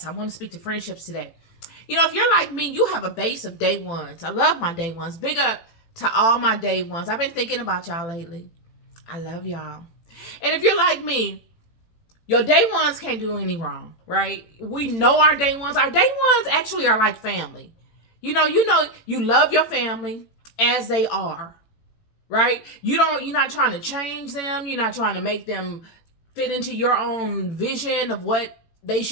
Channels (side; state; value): right; late; 18 ms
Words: I want to speak to friendships today. You know, if you're like me, you have a base of day ones. I love my day ones. Big up to all my day ones. I've been thinking about y'all lately. I love y'all. And if you're like me, your day ones can't do any wrong, right? We know our day ones. Our day ones actually are like family. You know, you love your family as they are, right? You're not trying to change them. You're not trying to make them fit into your own vision of what they